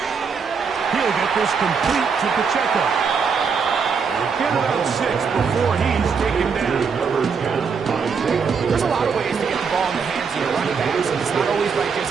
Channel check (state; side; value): quieter; left; 5.8 dB